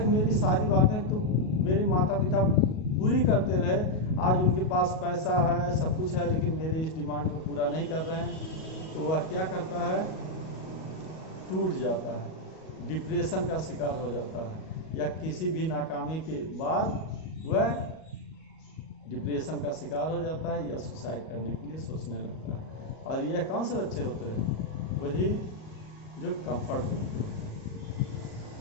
मेरी सारी बातें तो मेरे माता पिता पूरी करते रहे, आज उनके पास पैसा है, सब कुछ है, लेकिन मेरे इस डिमांड को पूरा नहीं कर रहे हैं। तो वह क्या करता है, टूट जाता है, डिप्रेशन का शिकार हो जाता है, या किसी भी नाकामी के बाद वह डिप्रेशन का शिकार हो जाता है या सुसाइड करने के लिए सोचने लगता है। और यह कौन से बच्चे होते हैं, वही जो कंफर्ट जोन के होते हैं।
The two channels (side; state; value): right; late; 38 ms